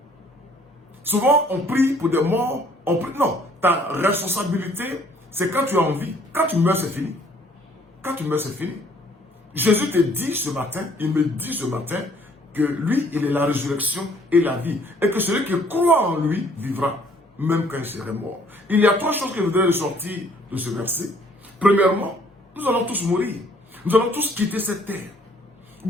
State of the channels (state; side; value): normal; both; correlation 0.60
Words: Souvent, on prie pour des morts. On prie, non, ta responsabilité, c'est quand tu es en vie. Quand tu meurs, c'est fini. Quand tu meurs, c'est fini. Jésus te dit ce matin, il me dit ce matin, que lui, il est la résurrection et la vie. Et que celui qui croit en lui vivra, même quand il serait mort. Il y a trois choses que je voudrais ressortir de ce verset. Premièrement, nous allons tous mourir. Nous allons tous quitter cette terre.